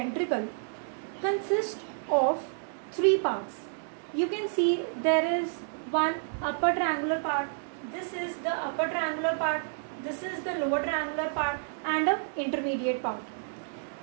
consists of three parts. You can see there is one upper triangular part. This is the upper triangular part. This is the lower triangular part and an intermediate part.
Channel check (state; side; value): silent; left; digital silence